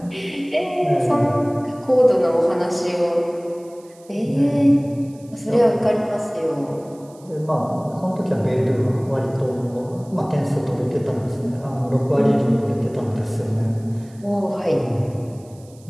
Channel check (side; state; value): right; noise; hiss, 28 dB below the sound